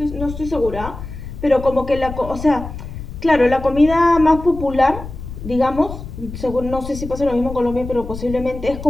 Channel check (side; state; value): left; noise; rumble, 10 dB below the sound